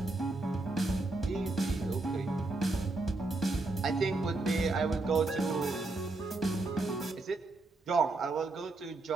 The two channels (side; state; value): left; quieter; 3.1 dB